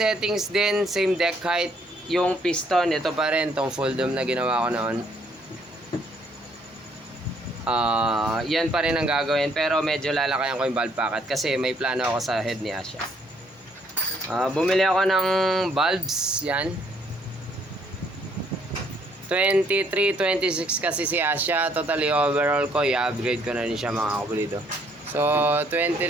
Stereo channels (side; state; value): both; normal; correlation 0.67